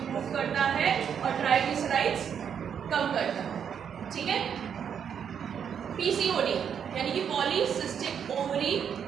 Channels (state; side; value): quieter; left; 7.9 dB